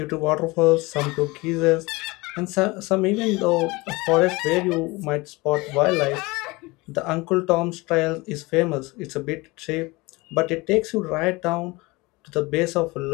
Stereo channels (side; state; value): right; quieter; 23.4 dB